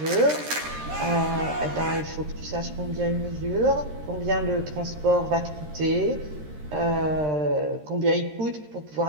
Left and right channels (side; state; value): left; late; 13 ms